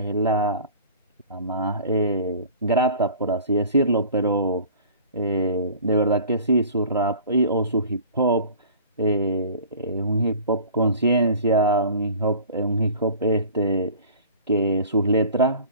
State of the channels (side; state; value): both; inverted; correlation -0.44